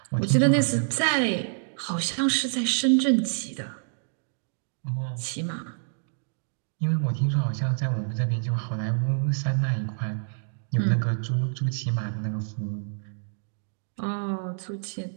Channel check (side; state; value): left; silent; digital silence